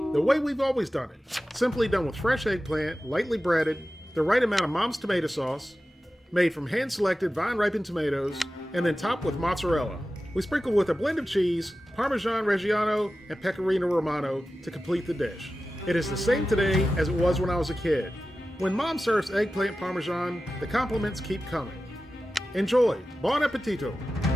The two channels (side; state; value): both; normal; correlation 0.94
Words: The way we've always done it. Simply done with fresh eggplant, lightly breaded, the right amount of mom's tomato sauce, made from hand-selected vine-ripened tomatoes, and then topped with mozzarella. We sprinkle with a blend of cheese, Parmesan Reggiano, and Pecorino Romano to complete the dish. It is the same today as it was when I was a kid. When Mom serves eggplant Parmesan, the compliments keep coming. Enjoy! Buon appetito!